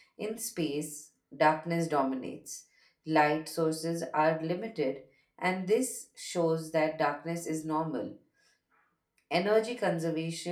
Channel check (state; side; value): identical; both; correlation 1.00